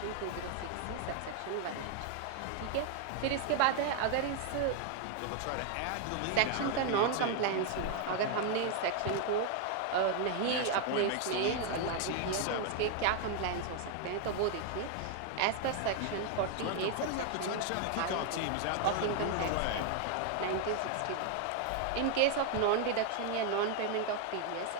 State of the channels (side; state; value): both; different; correlation 0.01